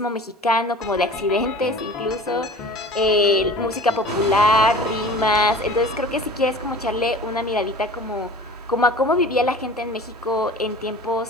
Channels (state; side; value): normal; both; correlation 0.41